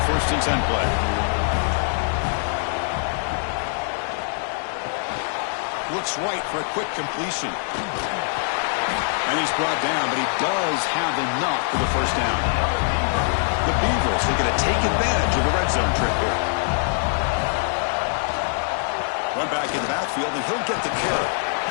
1st and 10 play. Looks right for a quick completion. And he's brought down, but he does have enough for the 1st down. The Beavers are going to take advantage of the red zone trip here. Run back in the backfield, and he'll get the carry.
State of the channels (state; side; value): silent; right; 63 dB below the other